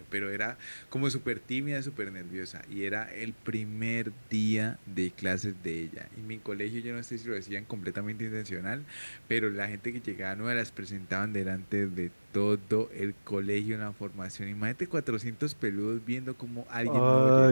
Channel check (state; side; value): inverted; both; correlation -1.00